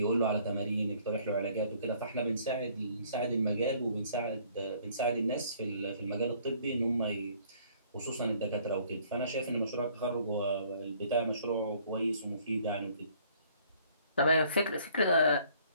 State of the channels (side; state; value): both; inverted; correlation -0.59